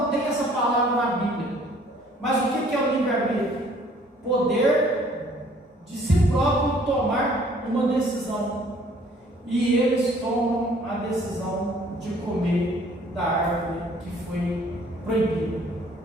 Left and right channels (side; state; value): both; normal; correlation 0.58